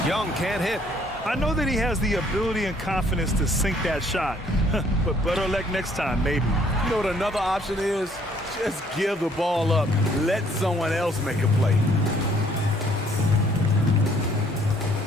Young can't hit. I know that he has the ability and confidence to sink that shot, but better luck next time, maybe. You know what another option is? Just give the ball up. Let someone else make a play.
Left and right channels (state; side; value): normal; both; correlation 0.62